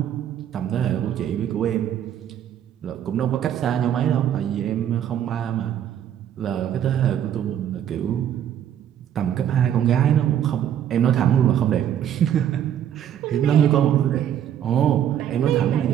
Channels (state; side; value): quieter; left; 10.1 dB